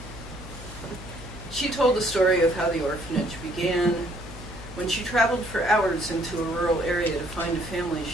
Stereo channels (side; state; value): left; noise; hum, 14 dB below the sound